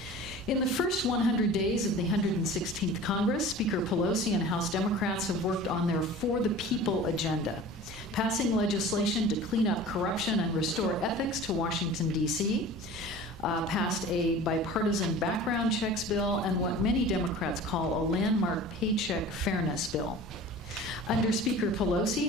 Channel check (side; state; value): both; normal; correlation 0.40